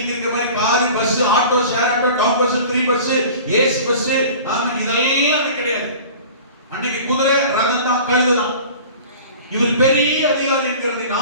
இருக்கிற மாதிரி car, bus, auto, share auto, town bus, free bus, AC bus, ஆமென், இதெல்லாம் கிடையாது. அன்னைக்கு குதிரை, ரதம் தான், கழுதை தான். இவர் பெரிய அதிகாரி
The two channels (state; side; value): inverted; both; correlation -0.40